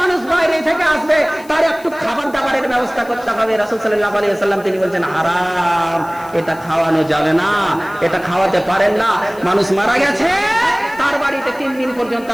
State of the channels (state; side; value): noise; left; hiss, 23 dB below the sound